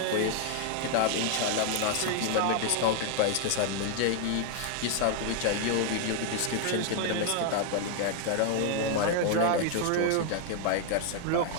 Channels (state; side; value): different; both; correlation 0.00